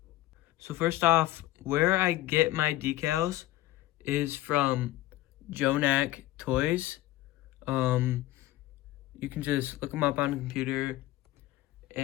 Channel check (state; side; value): quieter; right; 16.2 dB